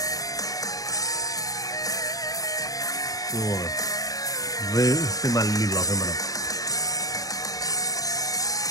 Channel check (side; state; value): right; late; 0.17 ms